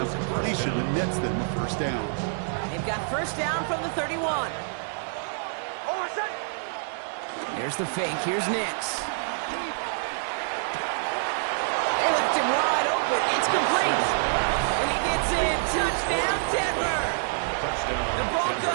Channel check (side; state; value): left; silent; digital silence